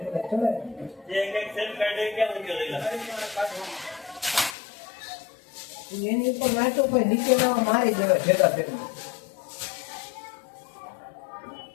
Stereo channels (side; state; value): right; drops out; at 4.5 s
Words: એની ઉપર નાચો કોઈ નીચે ના મારી દેવા ભેગા ભેગા।